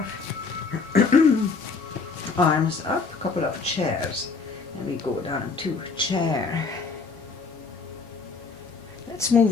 arms up, couple of chairs, and we go down to chair. Let's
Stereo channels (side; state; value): right; quieter; 4.6 dB